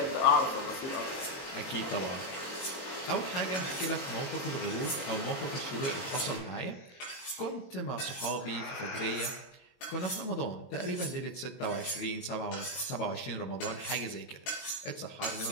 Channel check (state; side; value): late; right; 22 ms